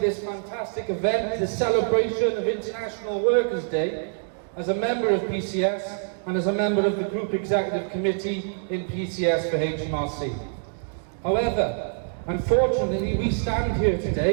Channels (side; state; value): left; silent; digital silence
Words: fantastic event, this celebration of International Workers' Day, as a member of PCS and as a member of the Group Executive Committee in PCS for HMRC. However, unfortunately, we stand here